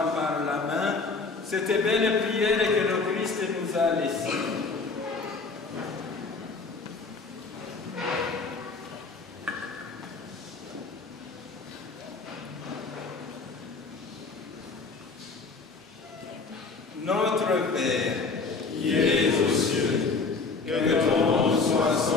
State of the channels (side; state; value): right; quieter; 4.2 dB